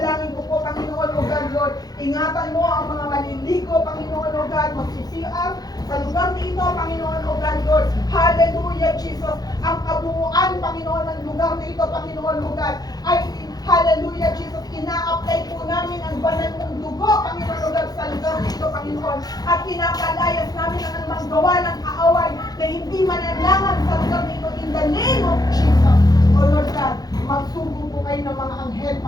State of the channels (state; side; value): late; right; 0.19 ms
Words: ko po, Panginoon, O God, Lord, ingatan mo ang mga maliligo, Panginoon, O God, mag-CR sa lugar na ito, Panginoon, O God, Lord. Hallelujah, Jesus. Ang kabuuan, Panginoon, ng lugar na ito, Panginoon, O God, ay hallelujah, Jesus. Ina-apply po namin ang banal mong dugo, Panginoon, O God, sa lugar na ito, Panginoon. At pinapalayas namin ang anumang gawa ng kaaway na hindi mananlangan sa lugar na ito in the name of Jesus. O Lord God, magsugo po kayo ng mga anghel,